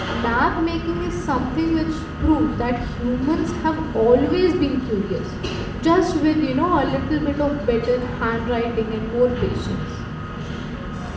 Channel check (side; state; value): both; identical; correlation 1.00